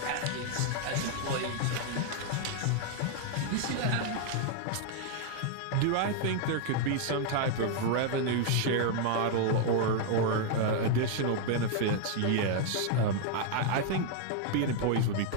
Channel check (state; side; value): different; both; correlation 0.00